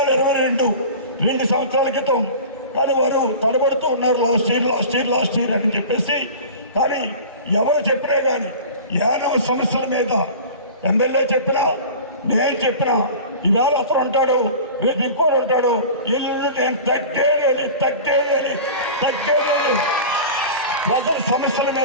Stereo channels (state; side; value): inverted; both; correlation -0.36